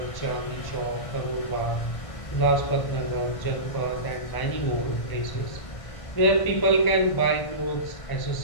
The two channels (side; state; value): right; late; 1.5 ms